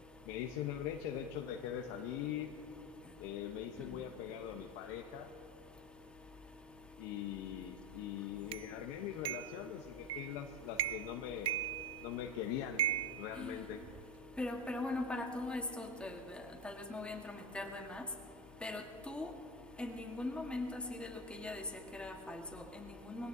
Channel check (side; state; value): both; normal; correlation 0.20